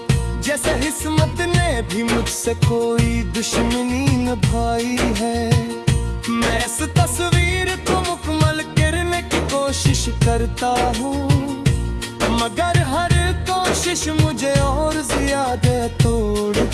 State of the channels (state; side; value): identical; both; correlation 1.00